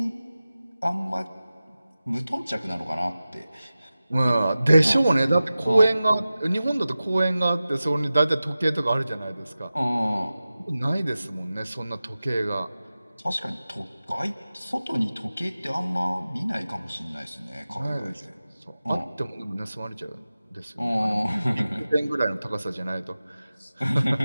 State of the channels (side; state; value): both; inverted; correlation -0.95